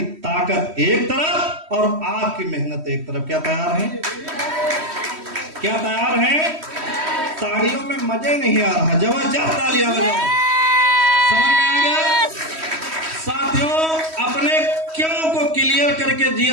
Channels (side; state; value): left; late; 3.1 ms